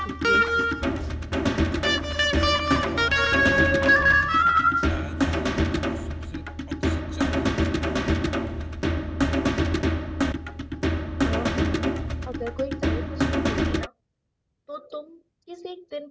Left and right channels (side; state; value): both; identical; correlation 1.00